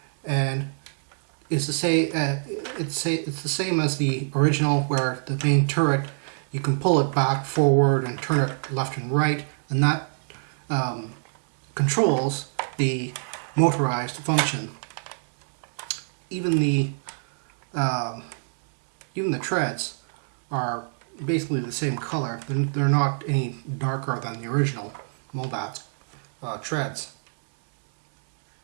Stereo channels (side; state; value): left; silent; 62 dB below the other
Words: and it's the same as the original, where the main turret you can pull it back, forward, and turn it left and right, and that controls the motorized function. Even the treads are basically the same color. They're not any darker than the original Mobat treads.